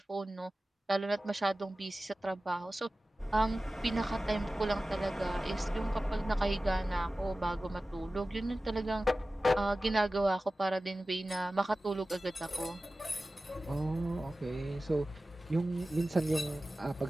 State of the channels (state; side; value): normal; both; correlation 0.96